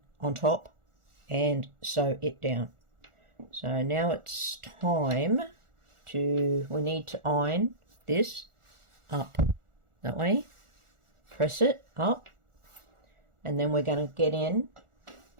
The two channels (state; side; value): late; left; 1.4 ms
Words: on top and sew it down. So now it's time we need to iron this up that way, press it up, and then we're going to get in